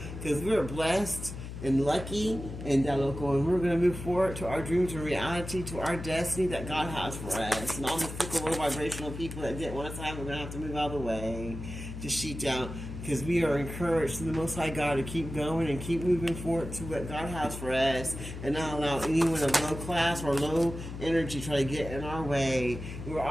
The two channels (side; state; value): left; noise; hum, 9 dB below the sound